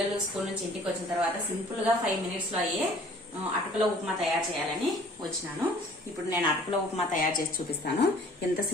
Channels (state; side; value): normal; both; correlation 0.53